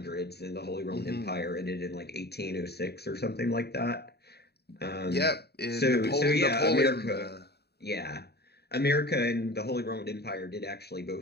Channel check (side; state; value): right; late; 0.47 ms